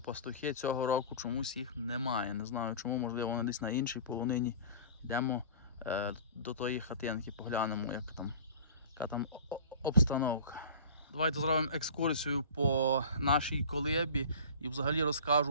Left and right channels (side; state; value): both; inverted; correlation -0.39